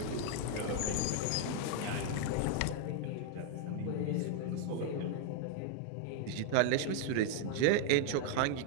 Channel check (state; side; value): different; both; correlation 0.00